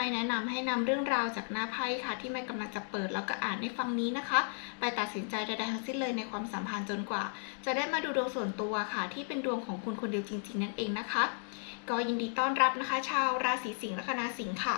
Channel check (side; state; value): right; silent; 55 dB below the other